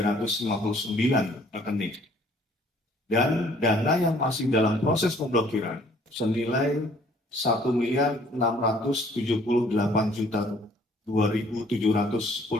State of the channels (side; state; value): both; normal; correlation 0.59